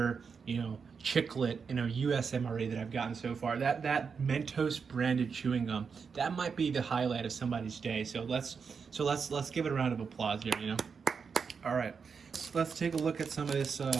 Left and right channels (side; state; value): left; quieter; 5.8 dB